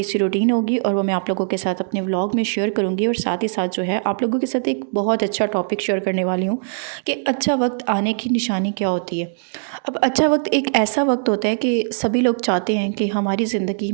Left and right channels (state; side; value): silent; left; digital silence